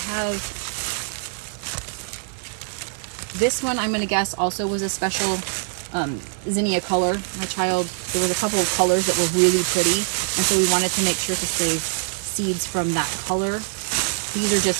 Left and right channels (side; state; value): left; silent; 63 dB below the other